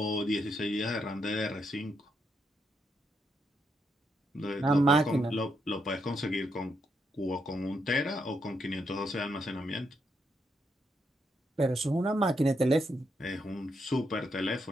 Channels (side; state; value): both; normal; correlation 0.79